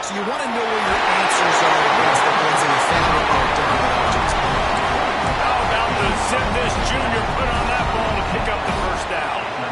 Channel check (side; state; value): both; identical; correlation 1.00